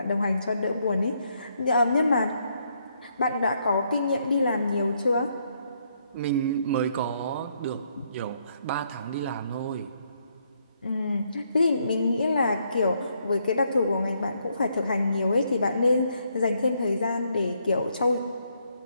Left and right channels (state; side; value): inverted; both; correlation -0.74